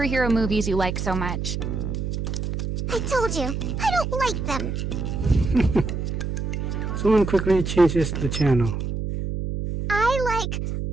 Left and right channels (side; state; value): right; noise; hum, 3 dB below the sound